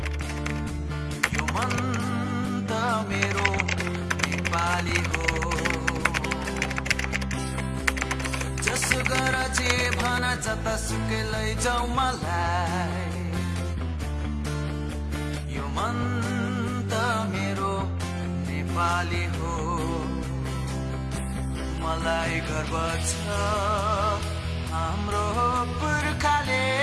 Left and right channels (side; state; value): both; identical; correlation 1.00